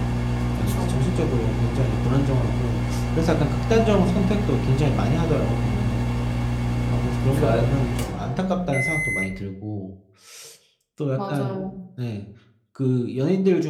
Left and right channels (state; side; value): identical; both; correlation 1.00